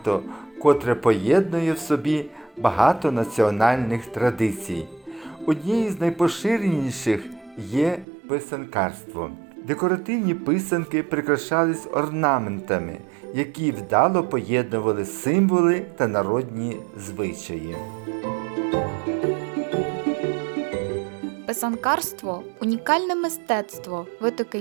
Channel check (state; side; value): drops out; left; at 8.1 s